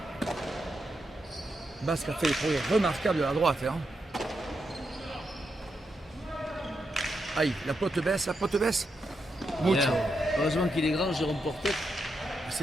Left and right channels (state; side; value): normal; both; correlation 0.84